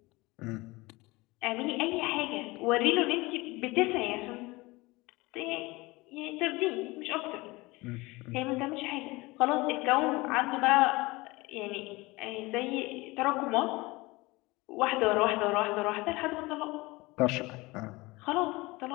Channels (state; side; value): quieter; right; 22.4 dB